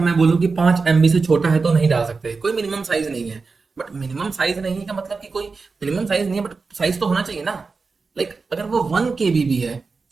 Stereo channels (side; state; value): left; quieter; 4.4 dB